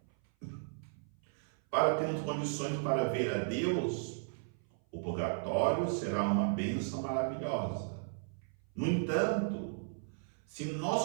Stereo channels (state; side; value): silent; left; 54 dB below the other